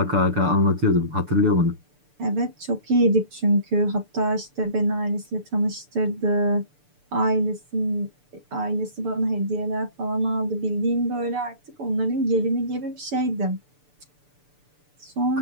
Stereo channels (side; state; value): left; late; 6.8 ms